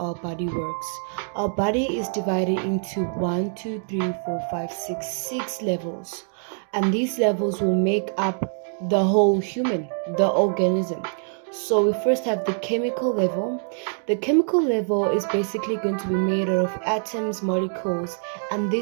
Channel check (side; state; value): left; silent; 57 dB below the other